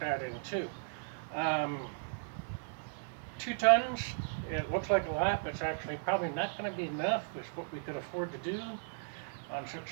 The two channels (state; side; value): silent; left; digital silence